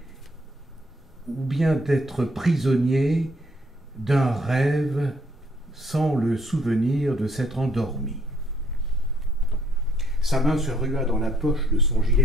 ou bien d'être prisonnier d'un rêve sans le souvenir de s'être endormi. Sa main se rua dans la poche de son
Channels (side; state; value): both; normal; correlation 0.67